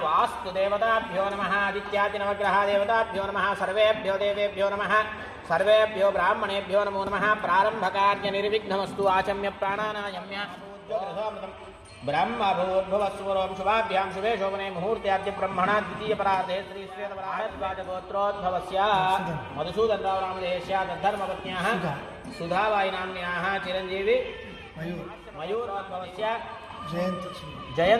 वास्तुदेवताभ्यो नमः आदित्यादिनवग्रहदेवताभ्यो नमः सर्वेभ्यो देवेभ्यो नमः सर्वेभ्यो ब्राह्मणेभ्यो नमो नमः प्रारंभकार्यनिर्विघ्नमस्तु आचम्य प्राणानायम्य ब्रह्मभूर्भुवस्वरों शुभाभ्यां शुभे शोभने मुहूर्त्याद्य ब्रह्मणा द्वितीय परार्धे श्री श्वेतवराहद्वाजगोत्रोद्भवस्य मधुसूदनराव नामधेयस्य तद्धर्मपत्न्याः सुधाबाई नाम्न्याः चिरंजीवी मयूरोद्भवस्य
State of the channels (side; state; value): both; identical; correlation 1.00